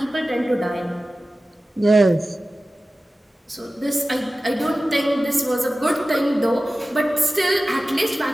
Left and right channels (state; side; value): normal; both; correlation 0.95